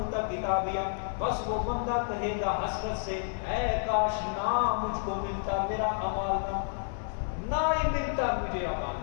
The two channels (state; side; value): silent; right; digital silence